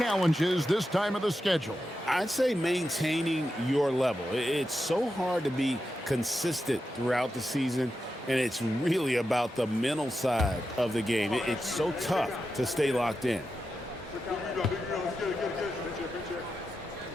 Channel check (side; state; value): both; normal; correlation 0.89